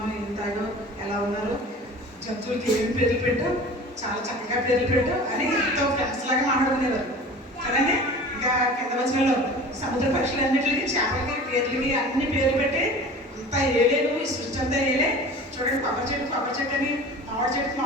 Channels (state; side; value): normal; both; correlation 0.40